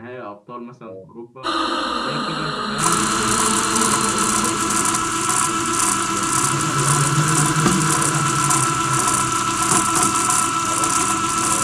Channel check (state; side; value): identical; both; correlation 1.00